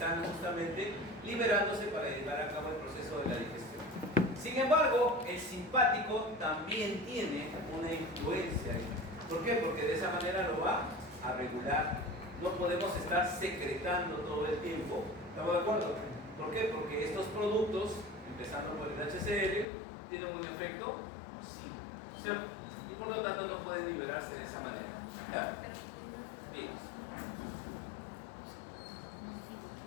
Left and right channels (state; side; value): drops out; right; at 19.7 s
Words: justamente liberándose para llevar a cabo el proceso de la digestión. Sin embargo, el simpático también tiene una influencia ahí. ¿Por qué? Porque de esa manera lo va a regular. No podemos estar secretando todo el tiempo. ¿Estamos de acuerdo? ¿Por qué? Porque estos productos, empezando por el HCl, tienen un efecto nocivo, ¿cierto? Y por lo tanto no pueden liberarse de esa manera. ¿Ya? Bien.